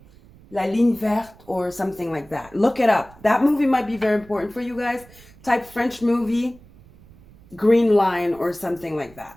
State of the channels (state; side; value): noise; right; rumble, 24 dB below the sound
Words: La Ligne Verte or something like that. Look it up. That movie might be very important for you guys. Type French movie, green line or something like that.